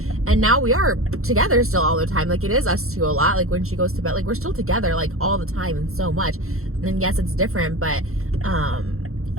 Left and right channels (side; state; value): left; late; 0.63 ms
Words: And now we are together still all the time. Like, it is us two a lot. Like, when she goes to bed, like, we're still together, like, all the time and so much. And yes, it's different, but